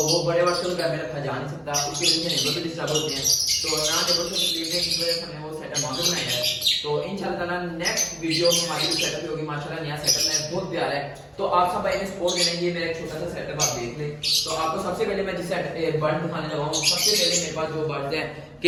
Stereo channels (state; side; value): identical; both; correlation 1.00